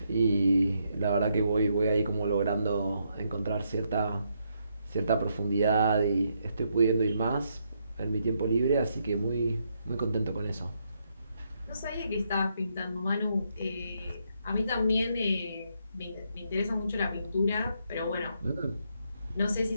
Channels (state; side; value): inverted; both; correlation -0.77